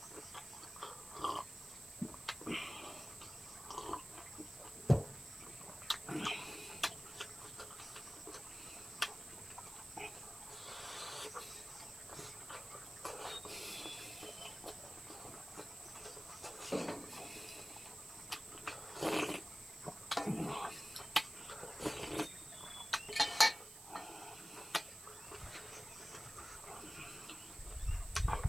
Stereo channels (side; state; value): right; noise; hiss, 14 dB below the sound